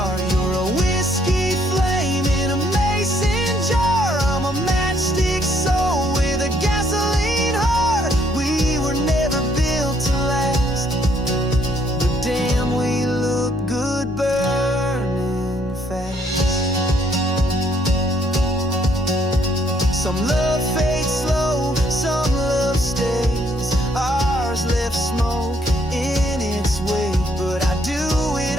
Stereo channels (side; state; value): both; normal; correlation 0.68